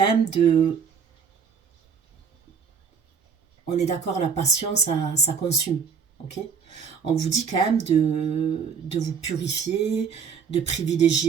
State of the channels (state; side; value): quieter; left; 6.3 dB